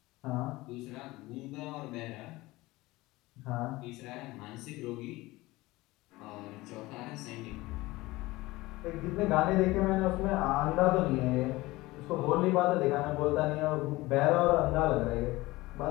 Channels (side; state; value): right; quieter; 19.9 dB